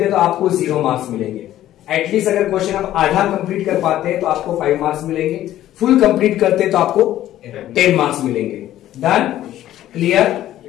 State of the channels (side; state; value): right; quieter; 13.2 dB